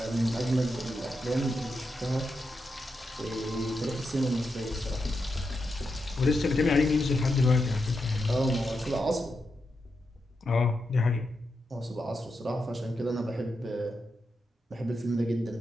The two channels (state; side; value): normal; both; correlation 0.86